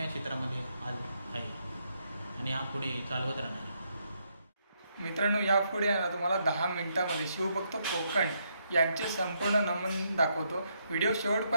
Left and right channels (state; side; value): inverted; both; correlation -0.77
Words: क्षेत्रामध्ये आज आहे आणि हा पुढे चालवत राहणार. मित्रांनो, यापुढे आहे ना तुम्हाला 10 मिनिटामध्ये शिवभक्त कोकण यांचे संपूर्ण नमन दाखवतो. व्हिडिओ